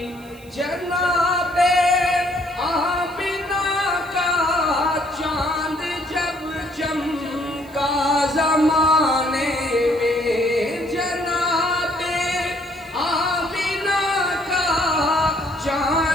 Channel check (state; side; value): noise; right; hiss, 26 dB below the sound